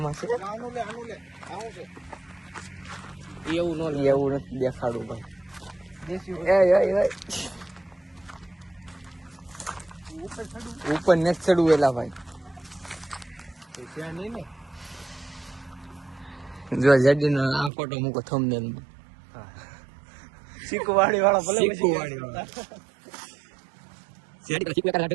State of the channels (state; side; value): drops out; left; at 17.7 s